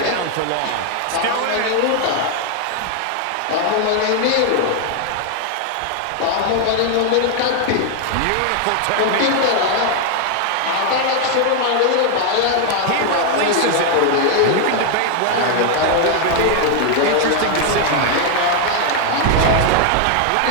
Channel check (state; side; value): different; both; correlation 0.01